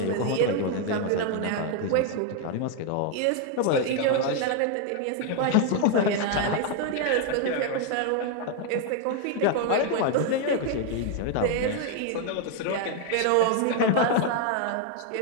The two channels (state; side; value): different; both; correlation 0.01